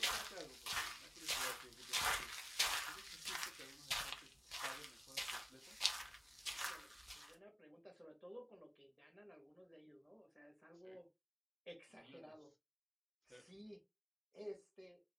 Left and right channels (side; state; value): both; identical; correlation 1.00